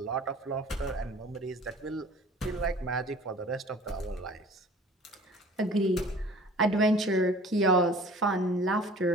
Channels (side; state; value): both; normal; correlation 0.46